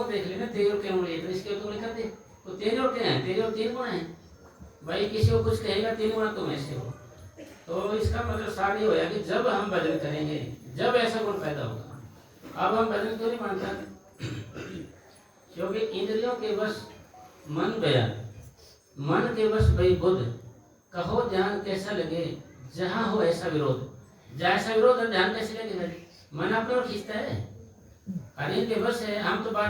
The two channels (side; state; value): both; identical; correlation 1.00